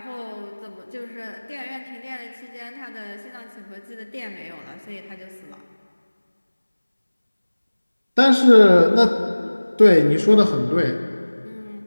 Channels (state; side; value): inverted; both; correlation -1.00